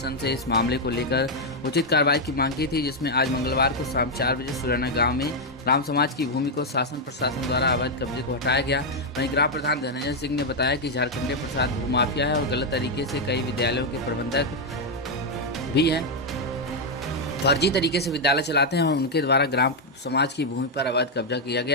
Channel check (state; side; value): normal; both; correlation 0.01